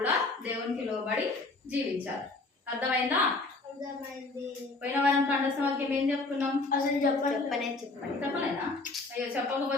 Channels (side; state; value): right; quieter; 3.4 dB